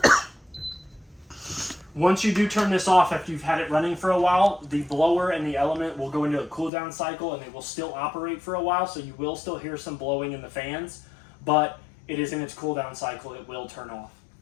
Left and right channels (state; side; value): drops out; right; at 6.7 s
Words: Once you do turn this off after you've had it running for a while, the blower and the element will go into a cool down cycle, and they will still operate for a while, so you will still hear some blowing in the fans, but it is in its cool down cycle. It will turn off.